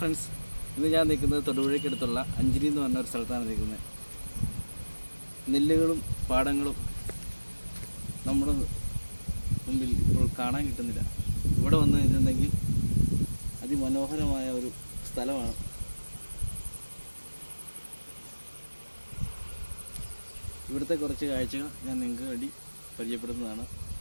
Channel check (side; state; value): both; inverted; correlation -1.00